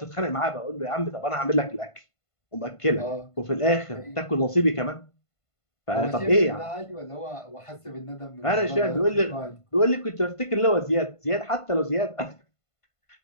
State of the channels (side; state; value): right; late; 1.5 ms